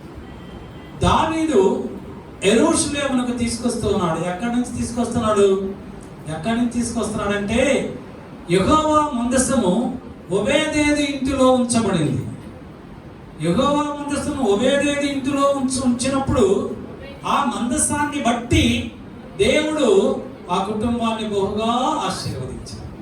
దావీదు యెరూషలేమునకు తీసుకొస్తున్నాడు. ఎక్కడి నుంచి తీసుకొస్తున్నాడంటే యెహోవా మందసము ఓబేదేదు ఇంటిలో ఉంచబడింది. యెహోవా మందసము ఓబేదేదు ఇంటిలో ఉంచినప్పుడు ఆ మందసాన్ని బట్టి దేవుడు ఆ కుటుంబాన్ని బహుగా ఆశీర్వదించాడు.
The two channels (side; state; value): both; identical; correlation 1.00